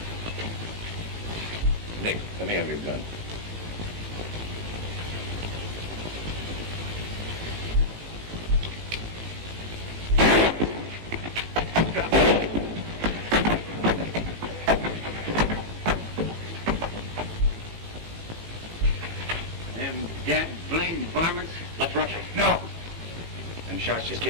Nick, let me have your gun. Them dead blamed varmints. Let's rush him. No. Them shots just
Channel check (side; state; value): left; late; 18 ms